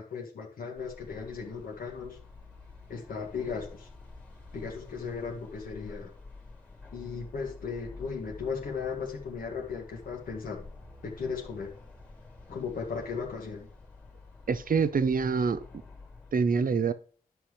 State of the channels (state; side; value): normal; both; correlation 0.60